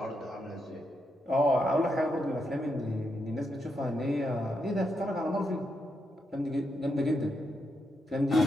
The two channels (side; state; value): both; normal; correlation 0.82